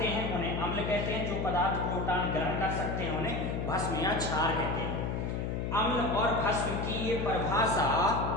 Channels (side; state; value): left; noise; hum, 2 dB below the sound